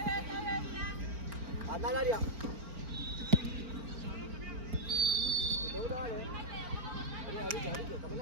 Anda al área. Si te gusta, dale. Vení, ahorita.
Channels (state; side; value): late; left; 4.4 ms